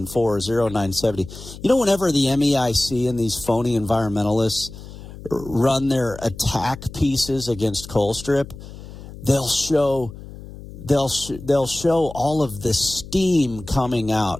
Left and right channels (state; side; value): noise; left; hum, 15 dB below the sound